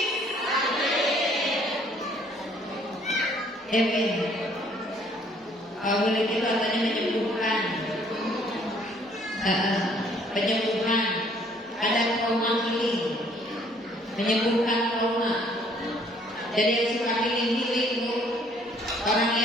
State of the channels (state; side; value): normal; both; correlation 0.61